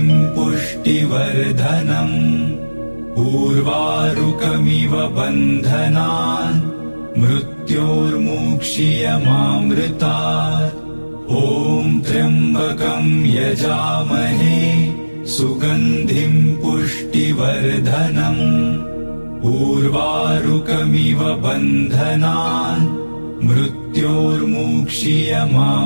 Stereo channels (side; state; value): both; inverted; correlation -1.00